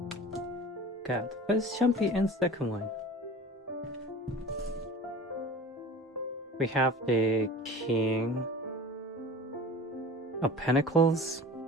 Got first jumpy and second one. We have the King of Pentacles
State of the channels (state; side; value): normal; both; correlation 0.38